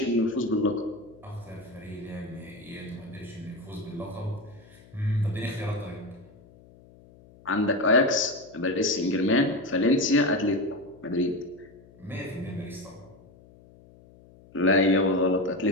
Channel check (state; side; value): noise; left; hum, 24 dB below the sound